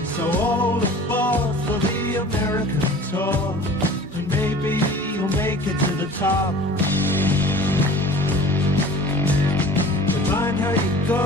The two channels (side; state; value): both; normal; correlation 0.43